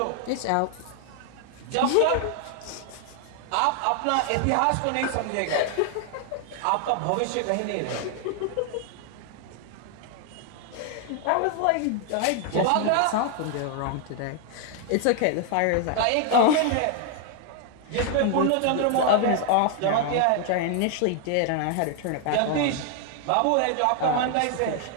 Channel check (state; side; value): different; both; correlation 0.00